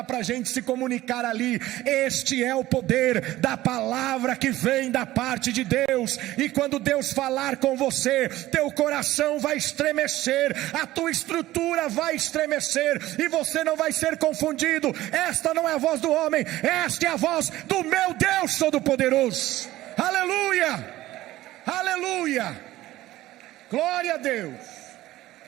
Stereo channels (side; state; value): left; quieter; 16.0 dB